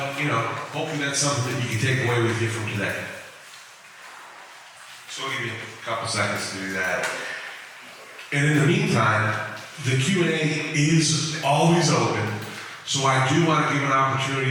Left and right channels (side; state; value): both; identical; correlation 1.00